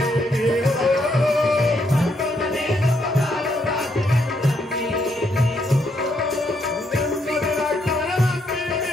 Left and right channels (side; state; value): both; normal; correlation 0.75